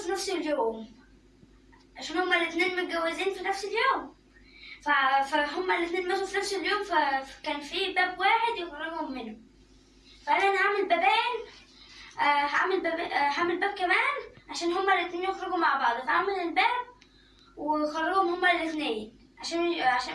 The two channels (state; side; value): identical; both; correlation 1.00